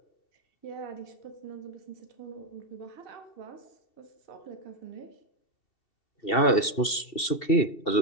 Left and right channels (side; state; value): right; late; 2.7 ms